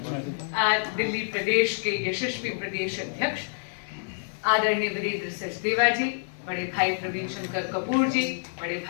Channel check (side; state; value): right; silent; 60 dB below the other